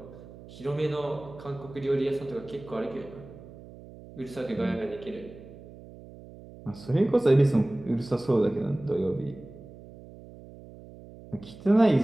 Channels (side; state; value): right; noise; hum, 18 dB below the sound